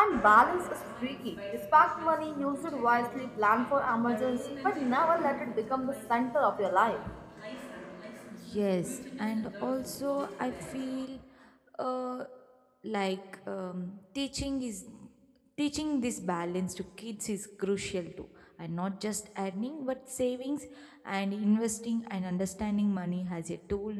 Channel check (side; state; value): both; identical; correlation 1.00